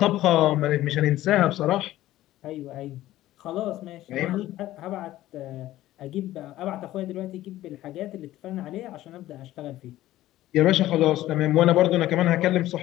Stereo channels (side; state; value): right; quieter; 14.9 dB